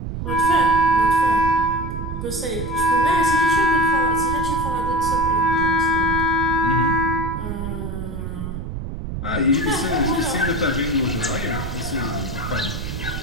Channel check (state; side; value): noise; right; rumble, 6 dB below the sound